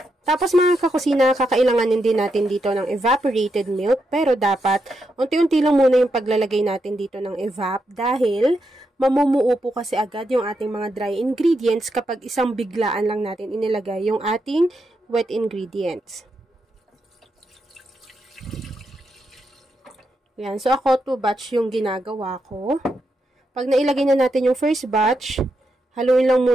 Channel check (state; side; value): normal; both; correlation 0.83